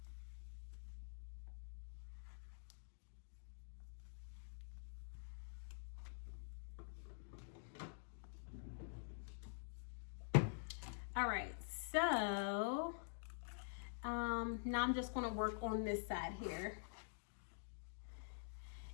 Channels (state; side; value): silent; right; digital silence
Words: All right, so now I'm just going to work on this side here.